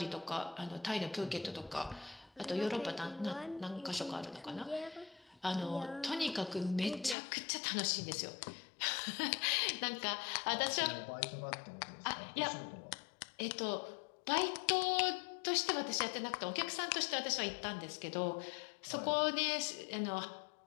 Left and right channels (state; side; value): drops out; right; at 7.2 s